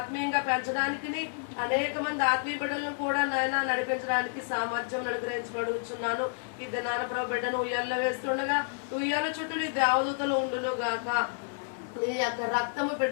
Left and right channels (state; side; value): silent; right; 58 dB below the other